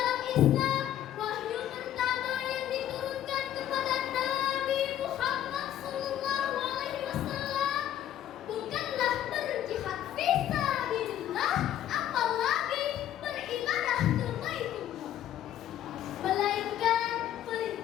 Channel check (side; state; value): right; quieter; 11.5 dB